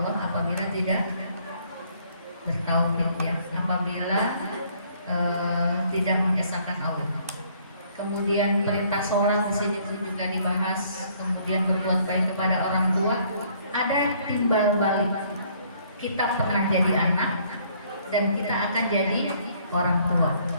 apabila tidak bertauhid ya. Apabila tidak mengesahkan Allah. Kemudian perintah sholat di sini juga dibahas. Kemudian berbuat baik kepada orang tua. Ada timbal balik. Kita pernah jadi anak dan kita akan jadi orang tua.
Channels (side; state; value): both; inverted; correlation -0.63